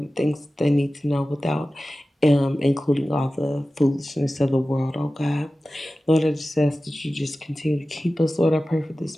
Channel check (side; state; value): both; normal; correlation 0.95